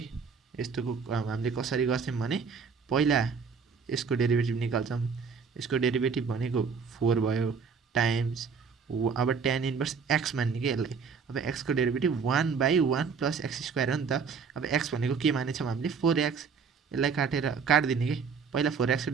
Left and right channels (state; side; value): quieter; left; 5.8 dB